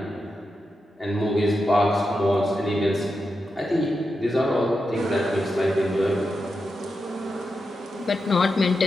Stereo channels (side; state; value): both; normal; correlation 0.88